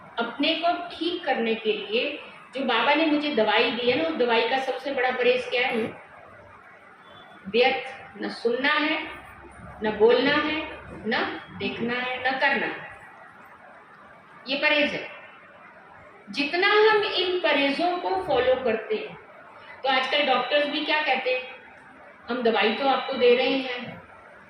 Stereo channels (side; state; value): both; identical; correlation 1.00